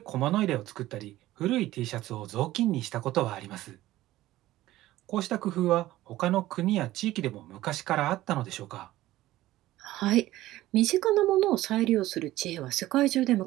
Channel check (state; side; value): quieter; left; 15.8 dB